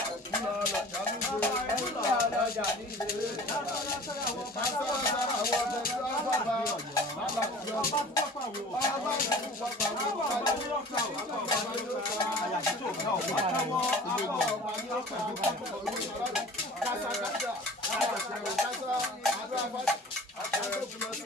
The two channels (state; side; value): normal; both; correlation 0.43